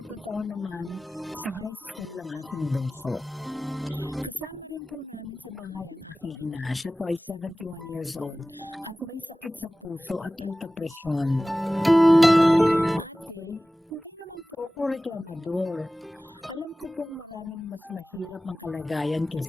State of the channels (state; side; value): normal; both; correlation 0.97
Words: taon naman sa high school ang aking bunso. Kasama rin po namin sa bahay ang aking ina. Siya po ay 71 years old at may sakit sa puso at alta presyon. Ate, hindi naman po ako reklamador. Alam ko pong maraming mas mahirap ang kalagayan